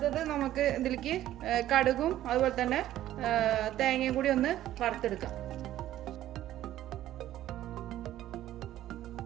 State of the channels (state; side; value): quieter; left; 13.4 dB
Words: നമുക്ക് ഇതിലേക്ക് കടുകും അതുപോലെ തന്നെ തേങ്ങയും കൂടി ഒന്ന് വറുത്തെടുക്കാം.